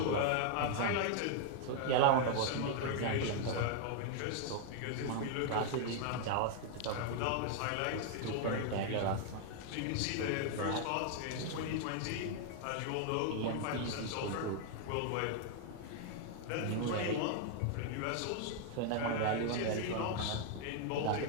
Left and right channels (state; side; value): different; both; correlation 0.00